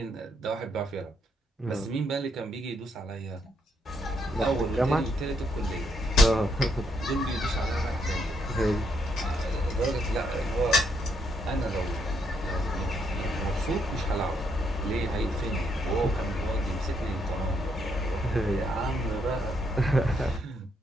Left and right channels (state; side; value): normal; both; correlation 0.74